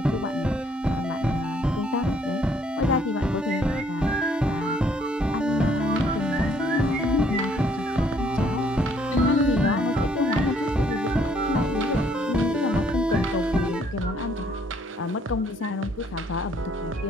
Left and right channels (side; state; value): both; normal; correlation 0.65